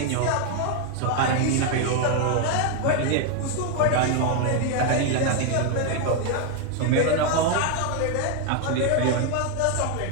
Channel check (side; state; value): both; different; correlation 0.00